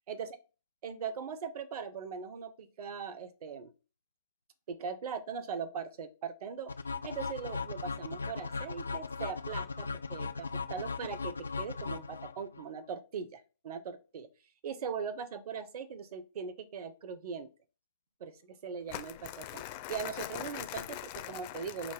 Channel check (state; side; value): inverted; both; correlation -0.38